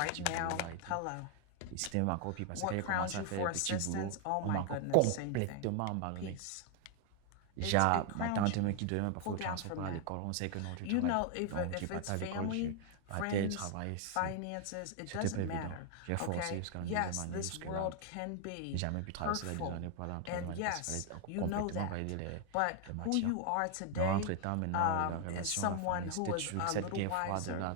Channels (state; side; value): different; both; correlation 0.00